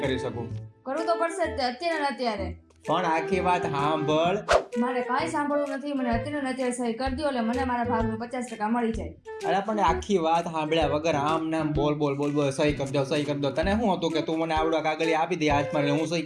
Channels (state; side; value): identical; both; correlation 1.00